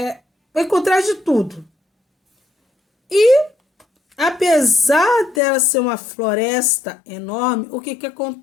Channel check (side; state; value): right; drops out; at 5.4 s